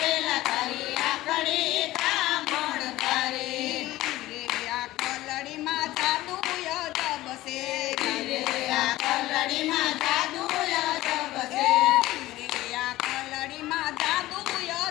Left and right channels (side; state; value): right; quieter; 16.7 dB